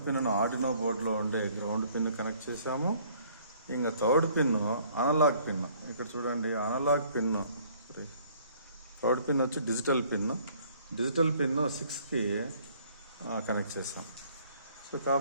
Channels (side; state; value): both; inverted; correlation -0.59